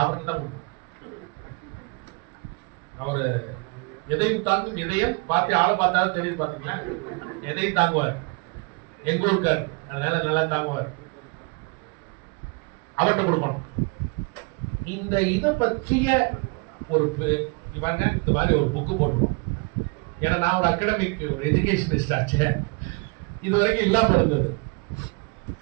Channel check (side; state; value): left; quieter; 30.7 dB